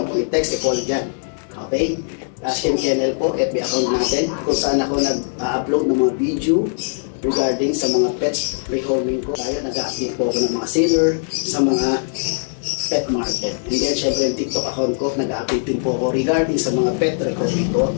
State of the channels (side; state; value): right; silent; digital silence